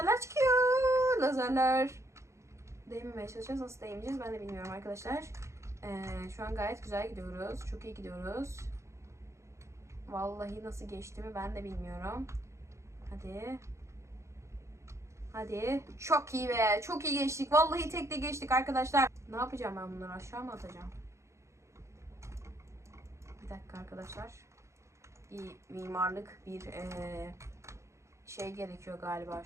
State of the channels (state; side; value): late; left; 0.14 ms